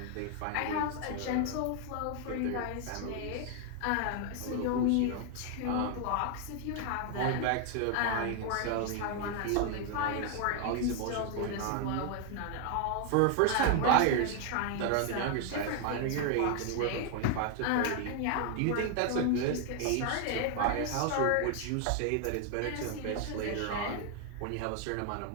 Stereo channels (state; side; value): different; both; correlation 0.00